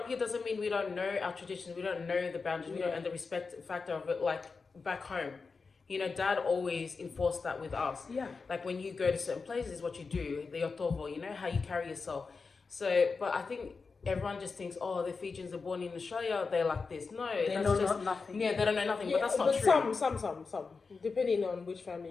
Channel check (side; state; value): right; quieter; 4.6 dB